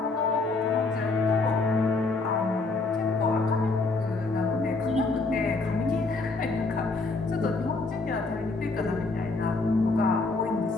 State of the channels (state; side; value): quieter; right; 3.6 dB